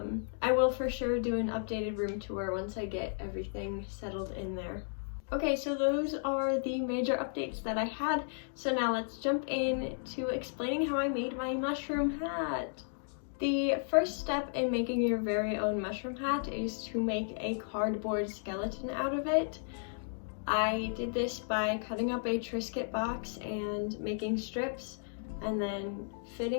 will for sure do an updated room tour once I get everything settled in there. Okay, so those are the major updates that I had. So now let's jump in to explaining how I made my mushroom hat. The first step in making your very own mushroom hat is to make a cardboard skeleton out of it. I did this by cutting up a Triscuit box and making strips and then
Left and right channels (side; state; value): right; silent; digital silence